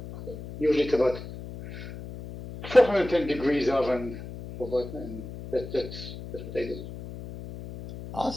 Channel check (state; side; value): noise; left; hum, 11 dB below the sound